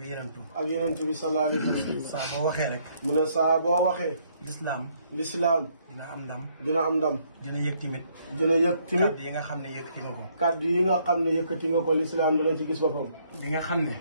yenentu. ak yenentu bi sallallahu alayhi wa sallam. saa boo waxee rek. mu ne saa boo waxee. lislaam dina am ndam. dina am ndam. dina yëg timit. dina yëg timit. kaddu yi nga xam ne yëkkati nga ko. kaddu yi nga xam ne yëkkati nga ko lislaam dina ci gis boppam. li nga xam ne.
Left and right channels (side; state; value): both; inverted; correlation -0.68